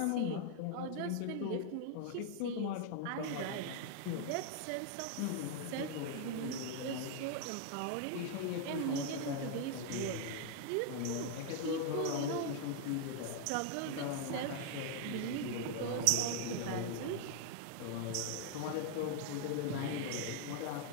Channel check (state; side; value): different; both; correlation 0.00